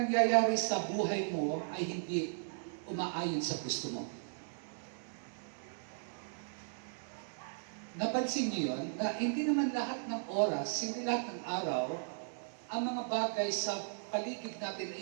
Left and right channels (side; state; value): left; silent; digital silence